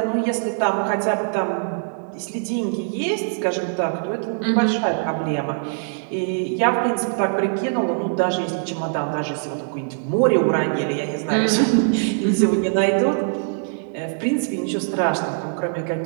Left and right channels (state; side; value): silent; left; digital silence